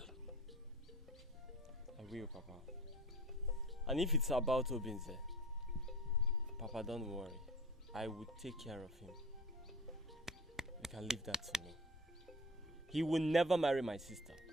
I will, Papa. And if it's about Obinze, Papa, don't worry. I will take care of him. You can leave that to me. He will never marry my sister.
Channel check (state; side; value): normal; both; correlation 0.38